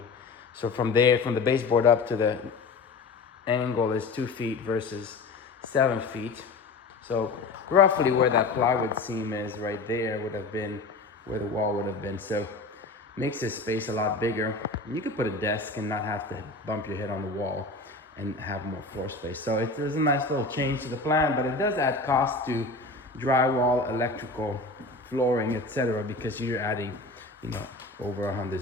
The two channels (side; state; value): right; quieter; 3.7 dB